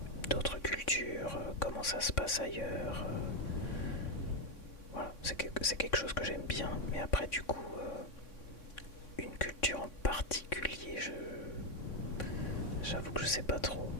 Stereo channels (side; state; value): right; late; 3.6 ms